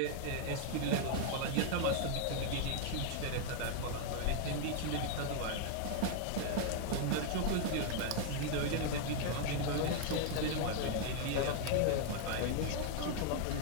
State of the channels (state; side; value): different; both; correlation 0.00